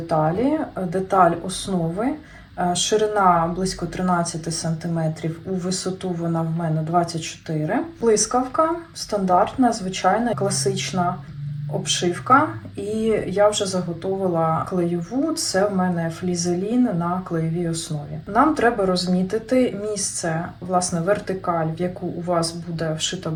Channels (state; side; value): identical; both; correlation 1.00